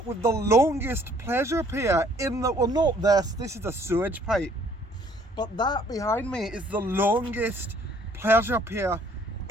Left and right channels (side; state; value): both; normal; correlation 0.60